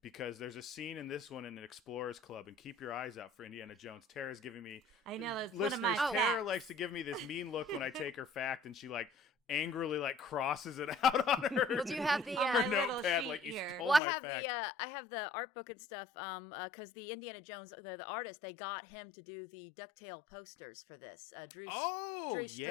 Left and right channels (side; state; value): right; drops out; at 14.0 s